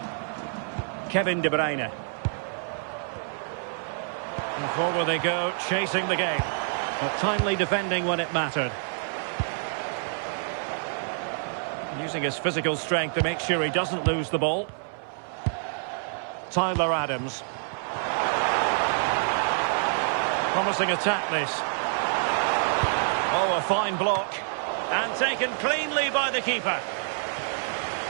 Kevin De Bruyne. And forward they go, chasing the game. But timely defending when it mattered. Using his physical strength to make sure he doesn't lose the ball. Tyler Adams. Promising attack this. Oh, a fine block. And taken cleanly by the keeper.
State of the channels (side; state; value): left; silent; 60 dB below the other